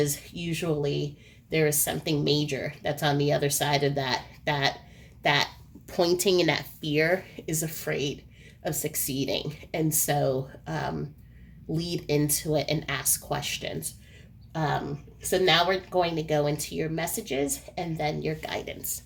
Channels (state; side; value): identical; both; correlation 1.00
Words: usually there is something major that's on the other side of that pointing, and that fear is afraid of succeeding. And so lead into it and ask questions. So now we're going to go into your messages and then your guidance.